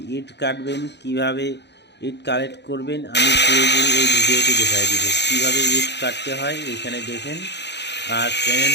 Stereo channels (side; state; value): right; late; 0.50 ms